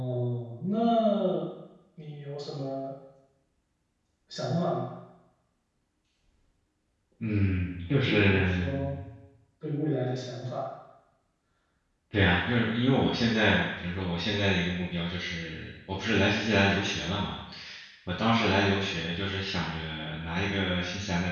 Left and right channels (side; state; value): both; identical; correlation 1.00